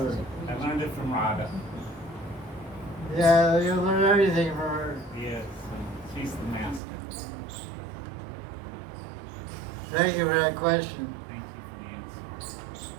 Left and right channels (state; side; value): drops out; left; at 6.8 s